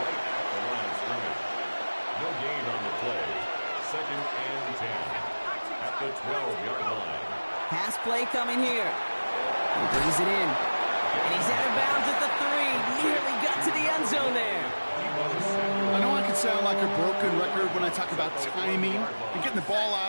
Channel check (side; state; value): both; inverted; correlation -1.00